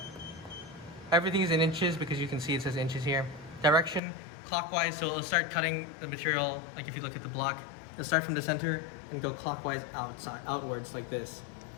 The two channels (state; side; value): drops out; right; at 4.0 s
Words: Everything is in inches because you can see it says inches here. Direction, clockwise, so it'll start cutting the material, like if you look at the block, it'll start from the center and go clockwise outwards like this